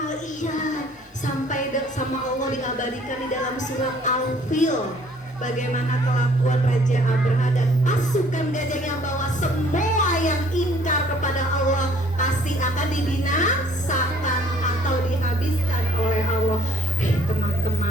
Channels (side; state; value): both; normal; correlation 0.59